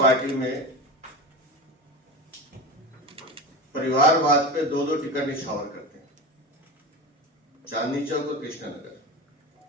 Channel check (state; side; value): normal; both; correlation 0.26